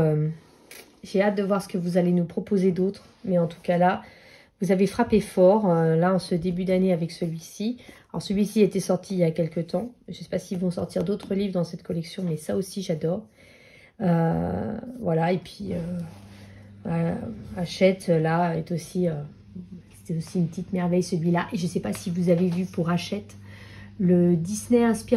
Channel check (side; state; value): both; identical; correlation 1.00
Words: j'ai hâte de voir ce que vous allez nous proposer d'autre. Mais en tout cas, là, vous avez frappé fort, là, en ce début d'année avec celui-ci. Alors, celui-ci était sorti il y a quelques temps. Je ne sais pas s'ils vont sortir d'autres livres dans cette collection, mais ça aussi, j'adore. Voilà, et puis Hachette là est aussi c'est aussi une petite merveille celui-là. Et je sais pas si vous avez vu pour Hachette le Disney